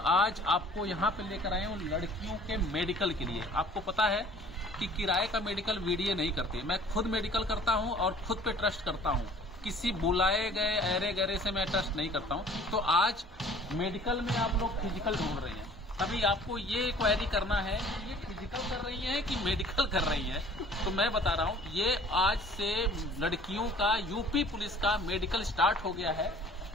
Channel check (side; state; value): both; normal; correlation 0.51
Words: आज आपको यहां पे लेकर आए हूं लड़कियों के मेडिकल के लिए। आपको पता है कि किराए का मेडिकल वीडियो नहीं करते, मैं खुद मेडिकल करता हूं और खुद पे ट्रस्ट करता हूं। किसी बुलाए गए अरे गहरे से मैं ट्रस्ट नहीं करता हूं। तो आज मेडिकल में आप लोग फिजिकल ढूंढ रहे हैं, अभी आपको ये क्वेरी करना है कि ये फिजिकल कर रही हैं कि मेडिकल कर रही हैं। तो मैं बता रहा हूँ, ये आज से लड़कियों का यूपी पुलिस का मेडिकल स्टार्ट हो गया है